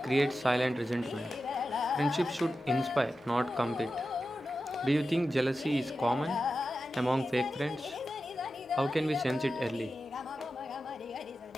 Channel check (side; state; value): both; normal; correlation 0.92